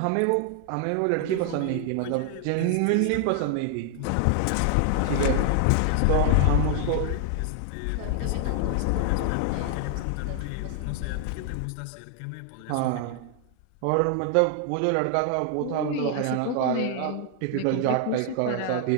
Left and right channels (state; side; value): different; both; correlation 0.00